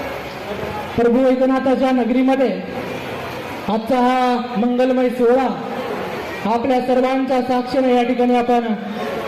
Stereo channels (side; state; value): both; identical; correlation 1.00